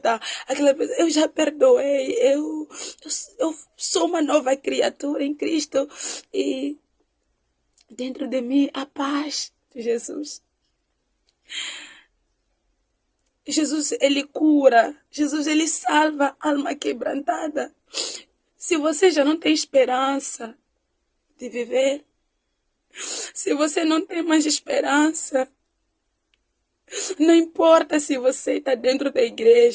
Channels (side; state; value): both; identical; correlation 1.00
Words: Eu já perdoei. Eu sou uma nova criatura em Cristo. E dentro de mim a paz de Jesus. Jesus, ele cura. Jesus, ele salva a alma quebrantada. Se você já não tem esperança de viver, se você não tem mais esperança, não importa se você está dentro da